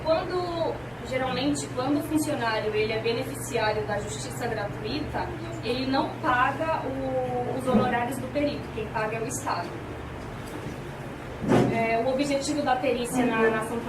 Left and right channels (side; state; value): both; identical; correlation 1.00